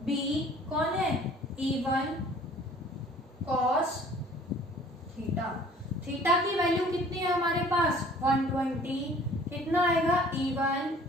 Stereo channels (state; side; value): normal; both; correlation 0.52